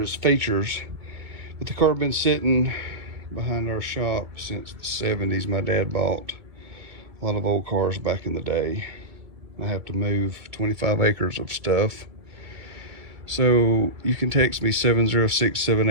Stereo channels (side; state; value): left; late; 2.2 ms